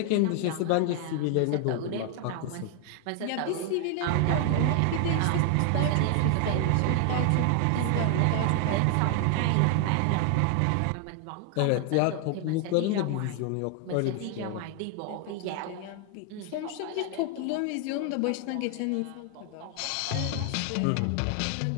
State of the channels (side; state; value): both; different; correlation 0.00